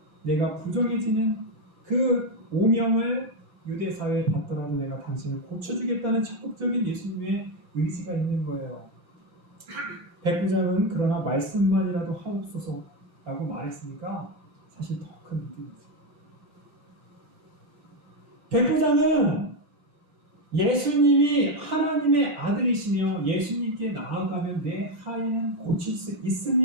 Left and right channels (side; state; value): left; late; 9.9 ms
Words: 내가 부정해지는 그 오명을 유대 사회에 받더라도 내가 당신을 고쳐주겠다는 적극적인 예수님의 의지가 있는 거예요. 백부장은 그러나 말씀만이라도 하옵소서라고 말했으니까 사실 더 큰 믿음이죠. 백부장은 예수님이 하나님의 아들이시며 예수님께 나아가면 내 하인은 고칠 수